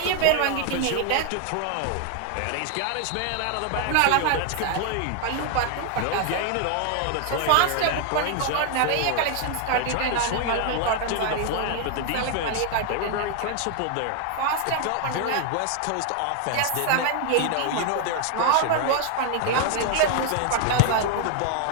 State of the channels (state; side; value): different; both; correlation 0.00